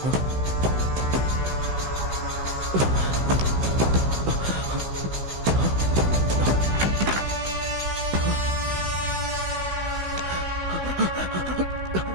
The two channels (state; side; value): late; left; 16 ms